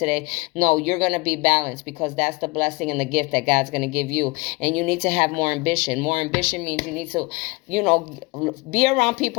No, you're going to be balanced, because that's the blessing and the gift that God's going to give you. And you need to have more ambition. More ambition means you need to, be around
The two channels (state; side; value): quieter; right; 25.7 dB